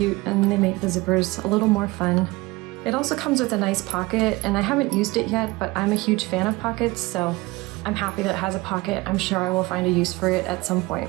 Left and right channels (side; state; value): left; quieter; 21.7 dB